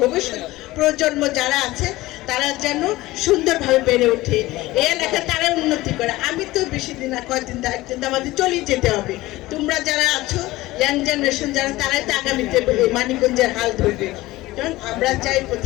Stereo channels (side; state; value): right; quieter; 18.4 dB